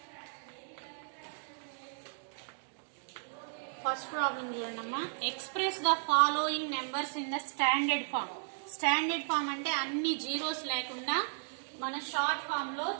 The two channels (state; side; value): silent; left; digital silence